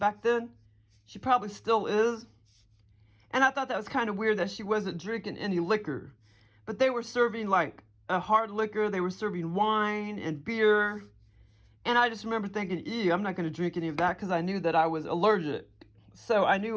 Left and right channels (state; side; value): identical; both; correlation 1.00